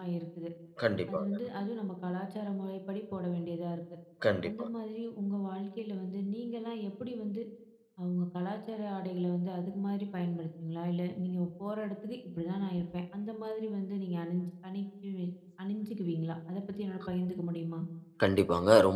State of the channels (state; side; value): identical; both; correlation 1.00